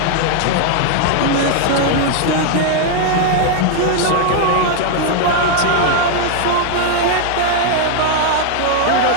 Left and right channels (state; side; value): different; both; correlation 0.00